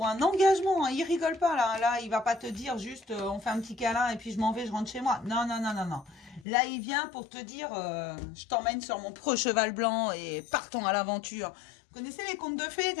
un engagement, hein, il rigole pas là. Là, il va pas te dire juste on fait un petit câlin et puis je m'en vais, je rentre chez moi. Non, non, non, non, non. Là, il vient pour te dire je t'emmène sur mon pro cheval blanc et partons à l'aventure. Vous connaissez les contes de fées,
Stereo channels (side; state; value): right; drops out; at 6.5 s